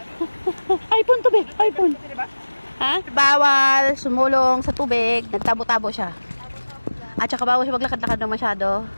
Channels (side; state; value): both; inverted; correlation -1.00